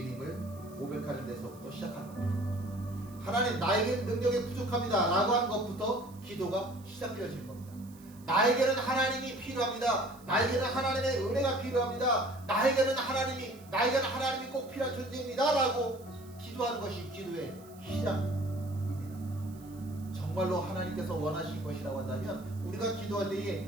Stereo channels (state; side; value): noise; right; hiss, 24 dB below the sound